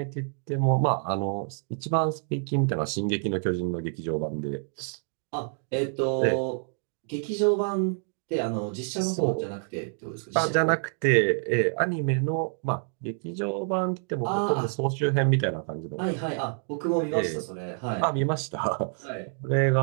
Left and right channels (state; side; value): silent; left; 60 dB below the other